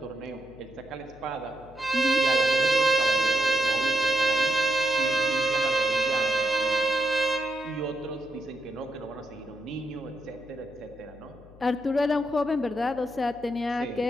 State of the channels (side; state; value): left; noise; hum, 22 dB below the sound